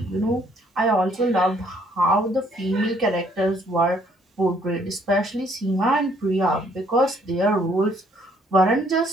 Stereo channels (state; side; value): normal; both; correlation 0.65